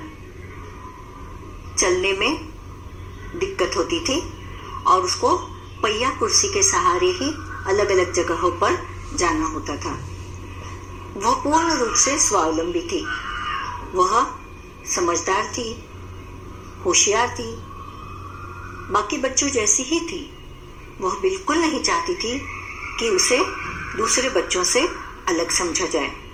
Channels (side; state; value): both; identical; correlation 1.00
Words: चलने में दिक्कत होती थी और उसको पहिया कुर्सी के सहारे ही अलग अलग जगहों पर जाना होता था। वह पूर्ण रूप से स्वावलंबी थी। वह समझदार थी, होशियार थी, बाकी बच्चों जैसी ही थी। वह बिल्कुल नहीं चाहती थी कि उसे दूसरे बच्चों से अलग समझा जाए।